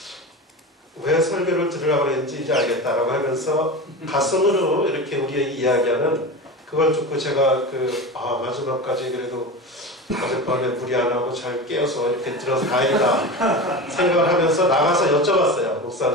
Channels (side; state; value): both; normal; correlation 0.27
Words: 왜 설교를 들으라고 했는지 이제 알겠다라고 하면서 가슴으로 이렇게 우리의 이야기하는 그걸 듣고 제가 마지막까지 그래도 어젯밤에 무리 안 하고 잘 깨어서 이렇게 들어서 다행이다 생각을 하면서 나가서 여쭤봤어요.